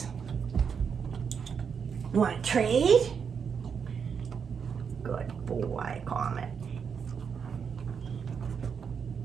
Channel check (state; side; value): quieter; left; 6.6 dB